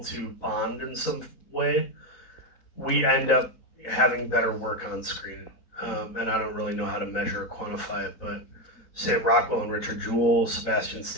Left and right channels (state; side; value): late; right; 3.9 ms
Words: to bond in some way, we end up having better work on screen. And I don't really know how to measure or quantify it, but Sam Rockwell and Richard Jewell, Sebastian